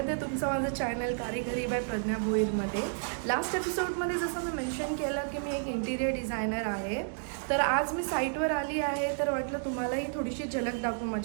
आहे तुमचं माझं चॅनल कारिगरी बाय प्रज्ञा भोईरमध्ये. लास्ट एपिसोडमध्ये जसं मी मेन्शन केलं की मी एक इंटिरियर डिझायनर आहे, तर आज मी साईटवर आली आहे. तर वाटलं तुम्हालाही थोडीशी झलक दाखवू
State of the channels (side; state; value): left; silent; digital silence